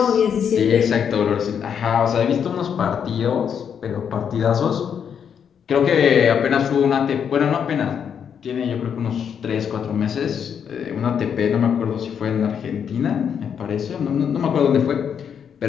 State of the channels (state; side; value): quieter; right; 7.7 dB